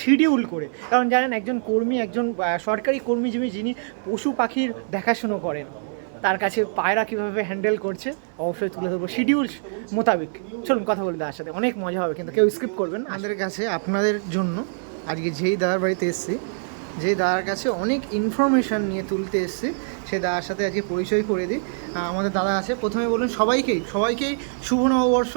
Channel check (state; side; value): silent; left; digital silence